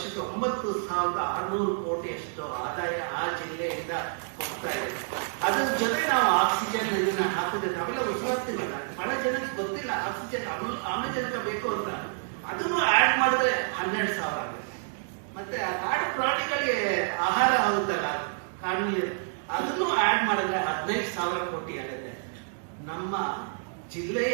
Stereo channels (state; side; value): silent; left; digital silence